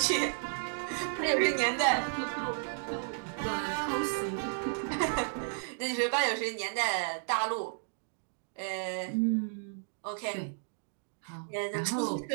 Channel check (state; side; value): silent; left; digital silence